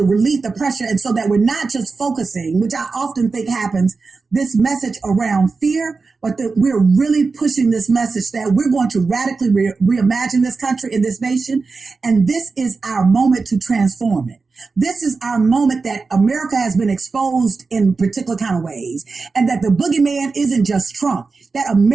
relieve the pressure, and so that we're not just focusing, which I often think happens, this message around fear, but that we're really pushing this message that we're going to radically reimagine this country and this nation, and this is our moment to transform it. This is our moment that America has been exposed in particular kind of ways, and that the boogeyman isn't just Trump, that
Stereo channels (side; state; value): left; quieter; 4.3 dB